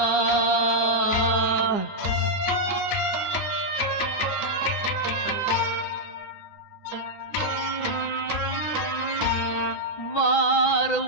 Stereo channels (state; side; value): late; right; 9.9 ms